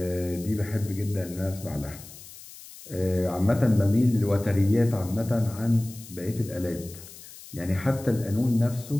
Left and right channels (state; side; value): noise; left; hiss, 17 dB below the sound